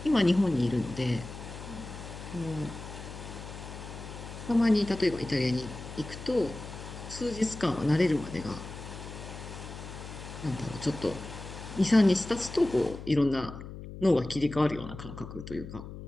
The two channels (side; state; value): left; noise; hum, 11 dB below the sound